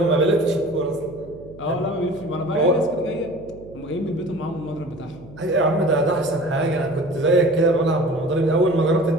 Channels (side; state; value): right; noise; hum, 19 dB below the sound